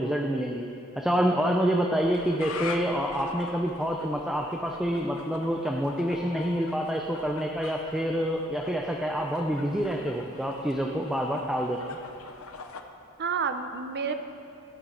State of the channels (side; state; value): both; normal; correlation 0.74